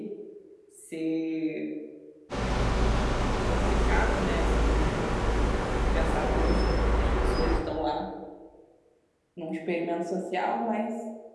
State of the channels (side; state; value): both; identical; correlation 1.00